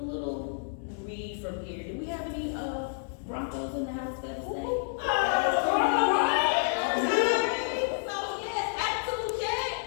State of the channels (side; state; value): right; silent; 58 dB below the other